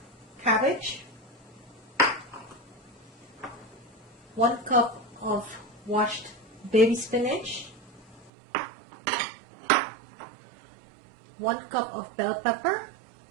cabbage, 1 cup of washed baby spinach, 1 cup of bell pepper,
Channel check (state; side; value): drops out; left; at 8.3 s